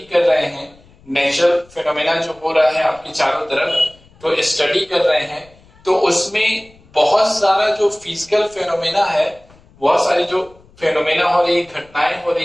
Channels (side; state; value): left; noise; rumble, 28 dB below the sound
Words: कर रहे हैं नेचुरल फेनोमेना जो हो रहा है आपके चारों तरफ, तो स्टडी कर रहे हैं, तो उसमें बहुत सारा जो फिजिकल फेनोमेना है, बहुत सारी जो फेनोमेना हो रही है, घटनाएं हो